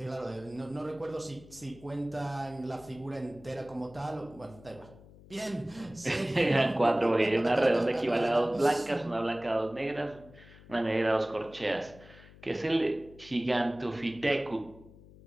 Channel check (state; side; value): noise; left; hum, 21 dB below the sound